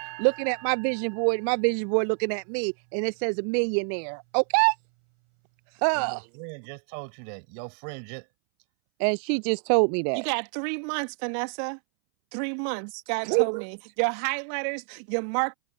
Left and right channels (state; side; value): silent; left; 60 dB below the other